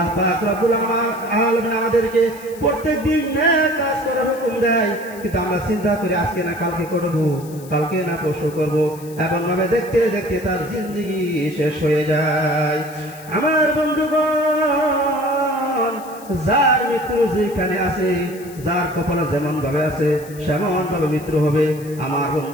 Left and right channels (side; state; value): left; noise; hiss, 20 dB below the sound